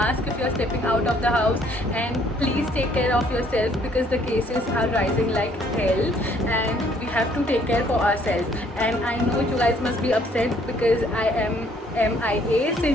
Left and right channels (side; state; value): both; normal; correlation 0.63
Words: if you are stepping out of the house, and please take care of yourself because the cases are rising like hell and we have to take care for ourselves. And I know you guys must be upset because I am MIA